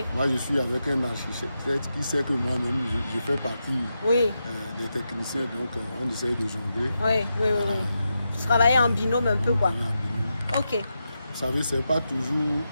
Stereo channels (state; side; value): inverted; both; correlation -0.87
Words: Moi, je suis avec un architecte qui sait que moi-même, je fais partie des techniciens, donc on essaye de jongler. Oui. Vous travaillez en binôme un peu, quoi. Ok. Vous savez, ce n'est pas toujours